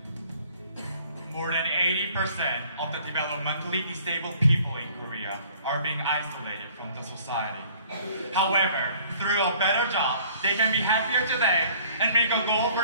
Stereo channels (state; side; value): inverted; both; correlation -0.54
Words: More than 80% of the developmentally disabled people in Korea are being isolated from the society. However, through a better job, they can be happier today and make a goal